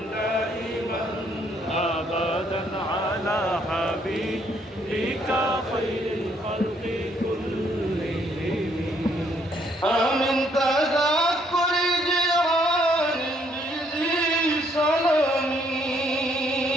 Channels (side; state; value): both; normal; correlation 0.69